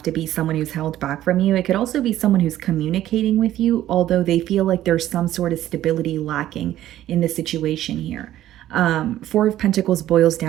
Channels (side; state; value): left; quieter; 13.2 dB